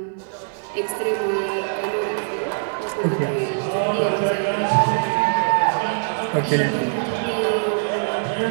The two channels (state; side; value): silent; left; digital silence